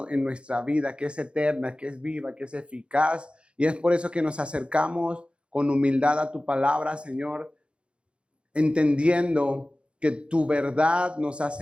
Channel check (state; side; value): late; left; 0.058 ms